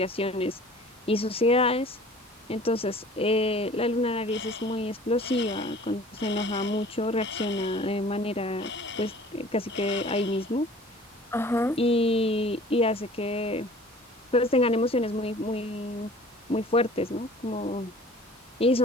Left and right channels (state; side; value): normal; both; correlation 0.48